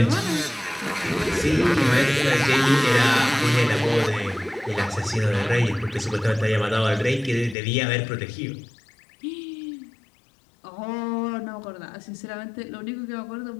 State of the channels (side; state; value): right; drops out; at 7.6 s